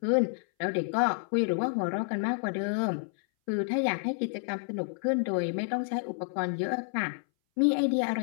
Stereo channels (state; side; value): silent; right; 58 dB below the other